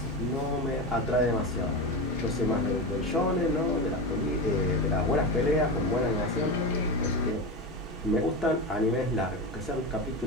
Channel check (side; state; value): both; normal; correlation 0.21